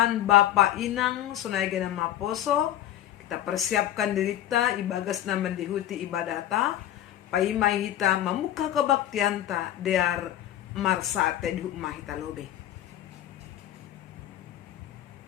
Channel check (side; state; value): right; quieter; 12.4 dB